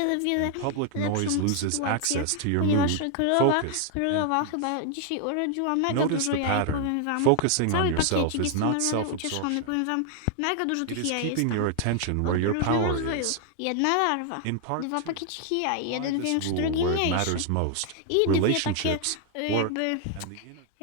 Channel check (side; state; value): both; different; correlation 0.00